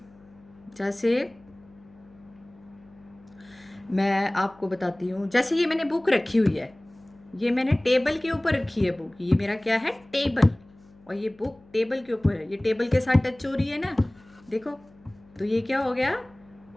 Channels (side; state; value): left; noise; hum, 27 dB below the sound